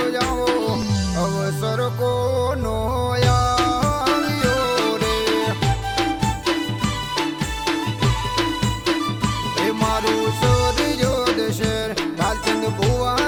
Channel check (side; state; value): both; identical; correlation 1.00